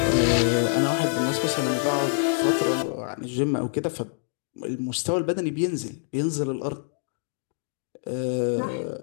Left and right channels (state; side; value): silent; right; digital silence